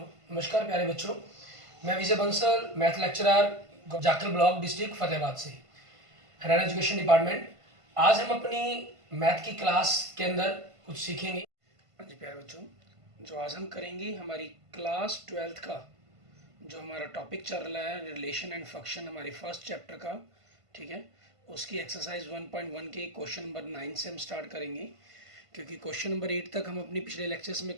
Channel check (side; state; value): left; late; 1.5 ms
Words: नमस्कार प्यारे बच्चों। मैं Vijay Bansal, math lecturer, Jakhal block, district Fatehabad से, हरियाणा एजुकेशन डिपार्टमेंट। आज हम अपनी मैथ की क्लास के अंदर कुछ सीखेंगे। हाँ जी प्यारे बच्चों, जो आज हम करेंगे हमारी क्लास 12th का जो हमारा टॉपिक चल रहा है रिलेशन एंड फंक्शन, हमारे फर्स्ट चैप्टर का, ठीक है। उसकी एक्सरसाइज 1.1 के क्वेश्चन नंबर 9 से हम स्टार्ट करेंगे, क्योंकि क्वेश्चन नंबर 8 तक हम अपनी पिछले लेक्चर्स में